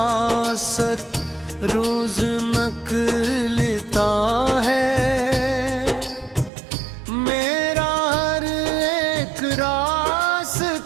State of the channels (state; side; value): drops out; left; at 6.5 s